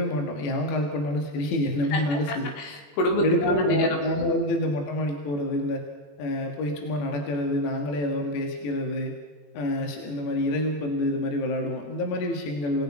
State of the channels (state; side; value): late; right; 21 ms